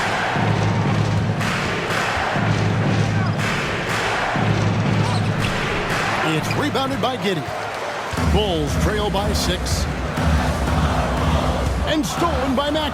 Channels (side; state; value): both; identical; correlation 1.00